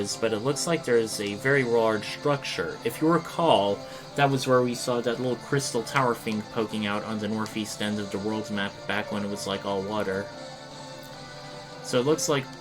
but it looks like there's a very large structure. If you recall, that was where we saw that little crystal tower thing poking out on the northeast end of the world's map back when it was like all water. So it looks like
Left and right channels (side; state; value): both; identical; correlation 1.00